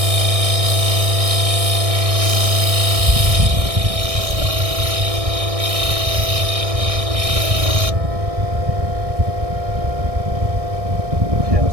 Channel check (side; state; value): left; late; 1.6 ms